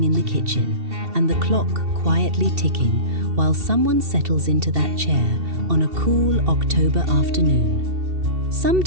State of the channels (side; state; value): left; late; 2.7 ms